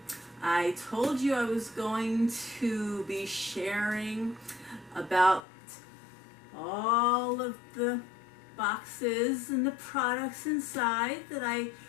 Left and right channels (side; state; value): right; drops out; at 5.4 s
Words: I told you I was going to be sharing about all of the boxes and the products inside that I